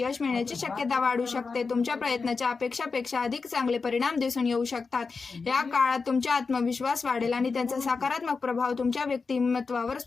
मिळण्याची शक्यता वाढू शकते. तुमच्या प्रयत्नाच्या अपेक्षापेक्षा अधिक चांगले परिणाम दिसून येऊ शकतात. या काळात तुमचा आत्मविश्वास वाढेल आणि त्यांचा सकारात्मक प्रभाव तुमच्या व्यक्तिमत्वावर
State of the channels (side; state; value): right; quieter; 4.6 dB